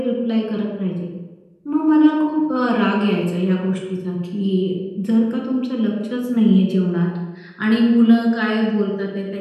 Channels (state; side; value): identical; both; correlation 1.00